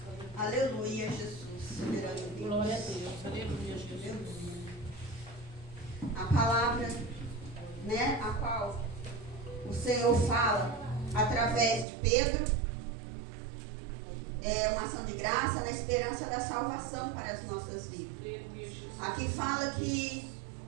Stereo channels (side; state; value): left; drops out; at 11.9 s